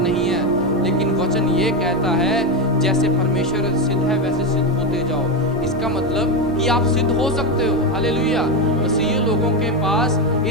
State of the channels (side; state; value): both; normal; correlation 0.12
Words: है, लेकिन वचन ये कहता है जैसे परमेश्वर सिद्ध है वैसे सिद्ध होते जाओ। इसका मतलब कि आप सिद्ध हो सकते हो। हालेलुया। मसीही लोगों के पास